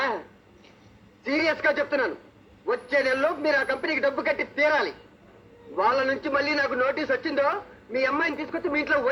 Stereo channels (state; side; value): identical; both; correlation 1.00